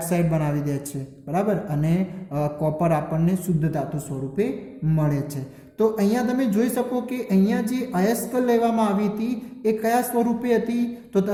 બનાવી દે છે, બરાબર. અને કોપર આપણને શુદ્ધ ધાતુ સ્વરૂપે મળે છે. તો અહીંયા તમે જોઈ શકો કે અહીંયા જે અયસ્ક લેવામાં આવી હતી એ કયા સ્વરૂપે હતી, તો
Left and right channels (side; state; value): both; identical; correlation 1.00